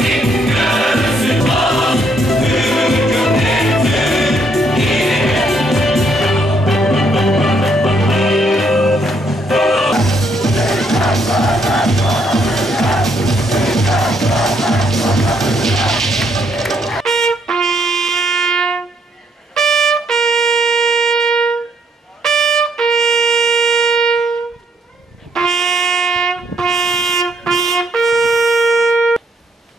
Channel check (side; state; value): both; normal; correlation 0.71